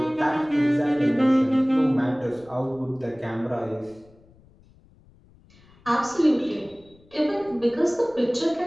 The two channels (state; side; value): noise; left; rumble, 28 dB below the sound